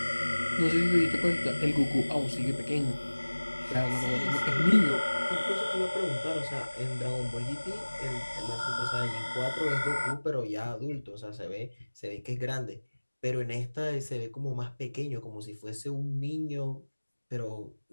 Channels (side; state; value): both; inverted; correlation -1.00